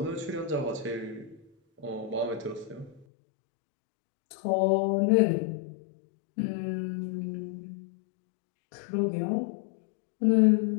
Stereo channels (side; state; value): right; drops out; at 3.1 s